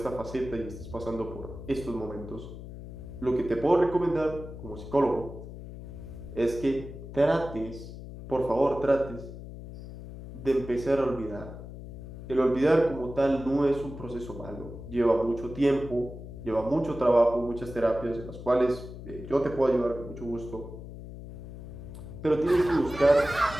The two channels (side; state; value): left; noise; hum, 12 dB below the sound